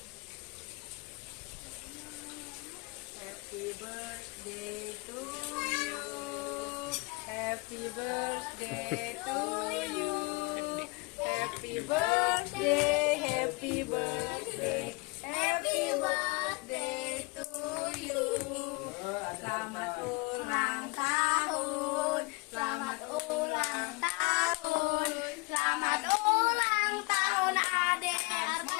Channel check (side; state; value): right; quieter; 26.8 dB